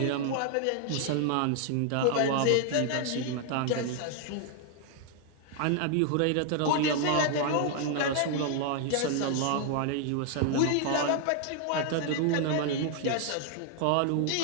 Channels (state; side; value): different; both; correlation 0.00